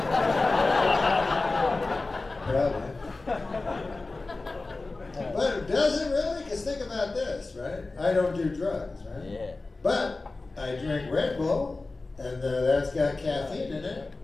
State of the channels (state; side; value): quieter; right; 3.4 dB